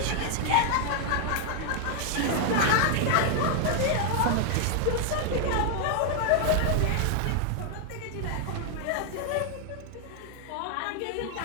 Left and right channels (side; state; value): both; different; correlation 0.00